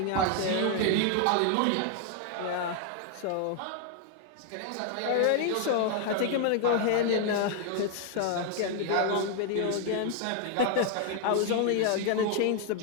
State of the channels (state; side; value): different; both; correlation 0.00